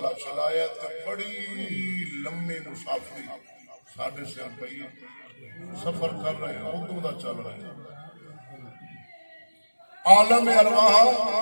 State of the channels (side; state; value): both; inverted; correlation -1.00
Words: چلایا تے بڑی لمبی مسافری ساڑھے سے پئی سفر کر رہے ہیں ادو دا چل رہے ہیں عالم ارواح